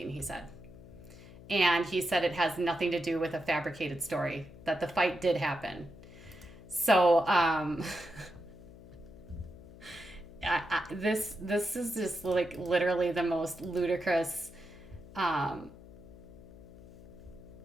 he said. And he said it has nothing to do with a fabricated story, that the fight did happen. So this is just like literally the most ludicrous. But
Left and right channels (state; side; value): noise; left; hum, 18 dB below the sound